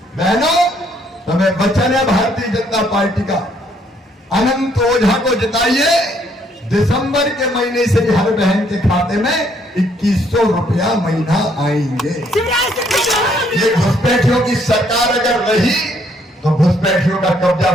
बहनों, तुम्हें वचन है भारतीय जनता पार्टी का, अनंत ओझा को जिताइए। दिसंबर के महीने से हर बहन के खाते में 2100 रुपया महीना आएंगे। ये घुसपैठियों की सरकार अगर रही तो घुसपैठियों का कब्जा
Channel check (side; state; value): both; normal; correlation 0.68